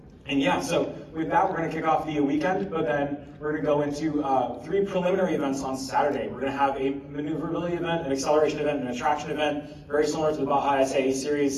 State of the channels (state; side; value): identical; both; correlation 1.00